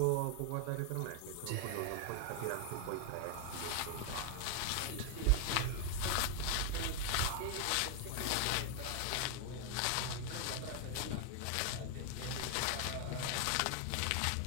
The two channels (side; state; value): both; different; correlation 0.01